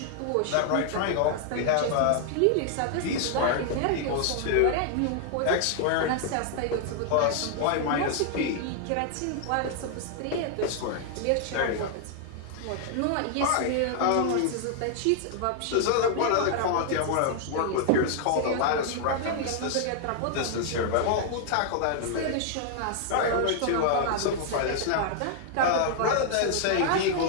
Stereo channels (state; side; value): different; both; correlation 0.00